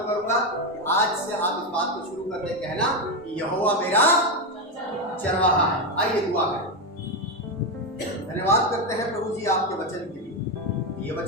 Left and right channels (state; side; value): normal; both; correlation 0.10